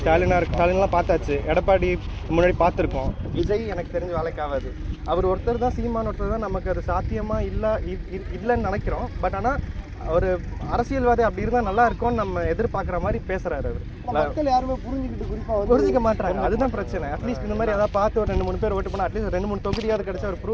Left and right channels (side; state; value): both; identical; correlation 1.00